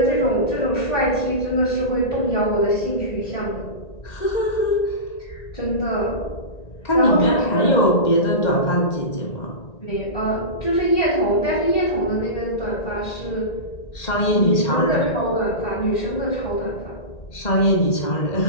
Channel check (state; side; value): late; right; 1.9 ms